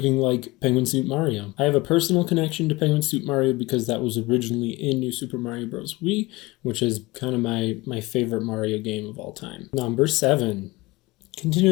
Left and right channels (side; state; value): right; quieter; 21.5 dB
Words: like Penguin Suit Mario. I have a personal connection to Penguin Suit Mario because that was originally in New Super Mario Bros. Wii, which is kind of my favorite Mario game of all time. Number 7.